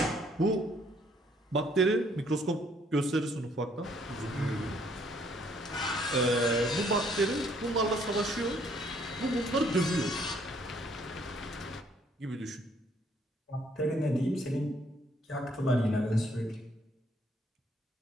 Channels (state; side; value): normal; both; correlation 0.65